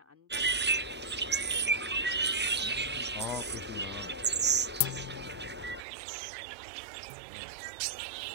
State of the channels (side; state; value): left; drops out; at 5.8 s